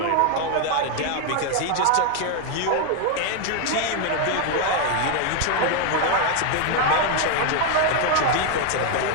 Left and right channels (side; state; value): both; different; correlation 0.01